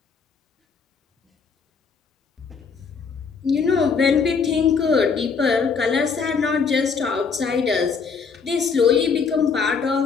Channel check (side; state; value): right; quieter; 5.5 dB